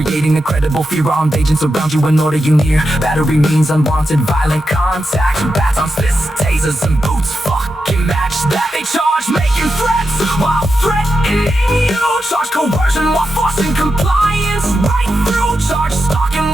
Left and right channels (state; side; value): normal; both; correlation 0.88